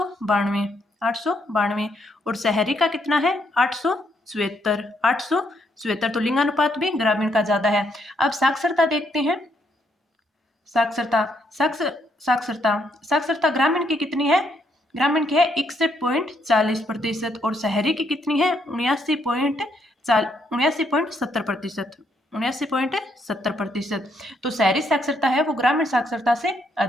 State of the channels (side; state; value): both; normal; correlation 0.74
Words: 892, और शहरी का कितना है 877, 877। तो लिंगानुपात भी ग्रामीण का ज्यादा है। अब साक्षरता देखते हैं, साक्षरता, साक्षरता, साक्षरता ग्रामीण की कितनी है, ग्रामीण की है 61.40%, और शहरी की कितनी है 79.70%, 79.70%। तो शहरी साक्षरता है वो ग्रामीण साक्षरता से